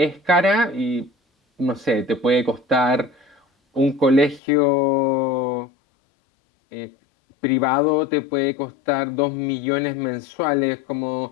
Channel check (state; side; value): drops out; right; at 4.4 s